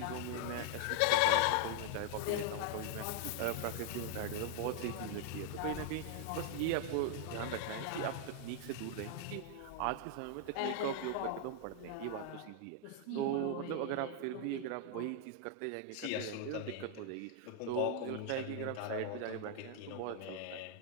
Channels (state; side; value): different; both; correlation 0.00